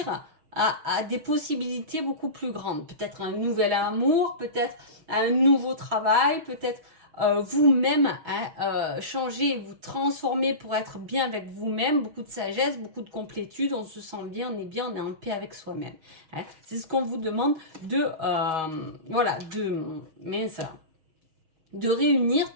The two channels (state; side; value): late; left; 6.3 ms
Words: à des possibilités beaucoup plus grandes. Peut-être un nouvel amour, peut-être un nouveau travail, peut-être vous-même, hein, changer, vous transformer pour être bien avec vous-même, beaucoup de sagesse, beaucoup de complétude, on se sent bien, on est en paix avec soi-même, hein. C'est ce qu'on vous demande de, voilà, de réunir